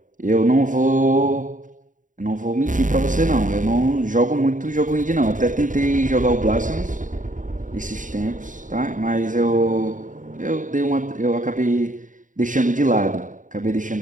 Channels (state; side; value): late; left; 0.38 ms